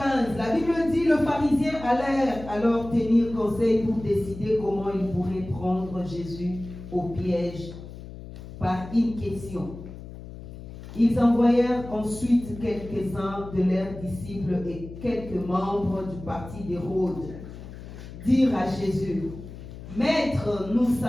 la Bible dit, le pharisien allait alors tenir conseil pour décider comment il pourrait prendre Jésus au piège par une question. Ils envoyèrent ensuite quelques-uns de leurs disciples et quelques membres du parti d'Hérode dire à Jésus, Maître, nous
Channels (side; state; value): left; noise; hum, 13 dB below the sound